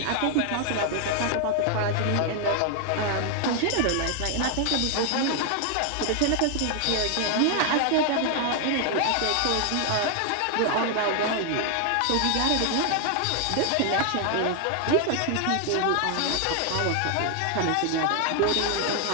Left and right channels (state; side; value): different; both; correlation 0.00